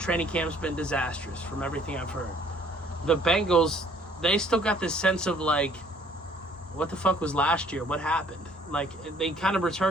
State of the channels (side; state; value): both; normal; correlation 0.59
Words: camp's been disastrous from everything I've heard. The Bengals, they still got this sense of, like, what the fuck was last year? What happened? Like, they kind of